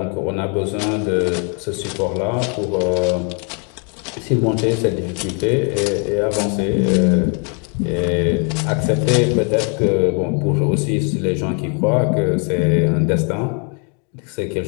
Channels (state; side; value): quieter; right; 38.2 dB